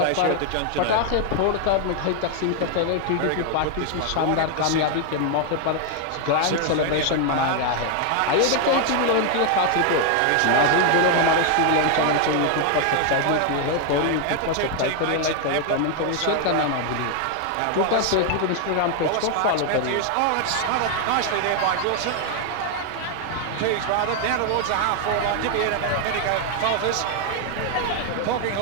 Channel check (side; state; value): both; different; correlation 0.00